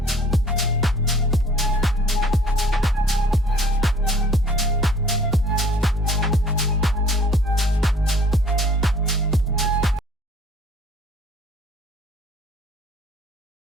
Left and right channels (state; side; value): normal; both; correlation 0.53